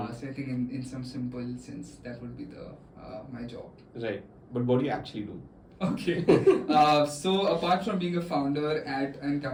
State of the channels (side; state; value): both; identical; correlation 1.00